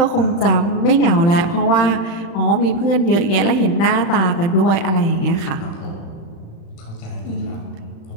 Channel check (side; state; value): right; late; 35 ms